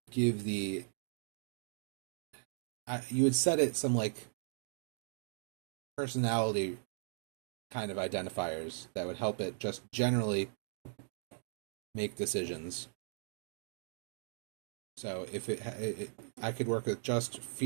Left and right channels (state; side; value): silent; left; digital silence